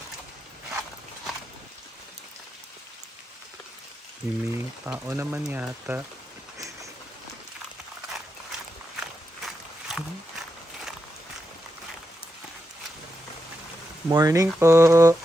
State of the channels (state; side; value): normal; both; correlation 0.87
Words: May tao naman yata. Morning po.